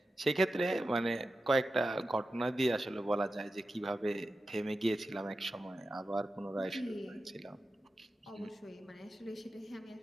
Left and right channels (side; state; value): both; normal; correlation 0.92